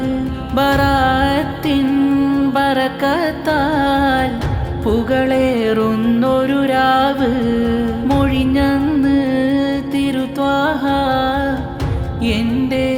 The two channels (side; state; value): both; identical; correlation 1.00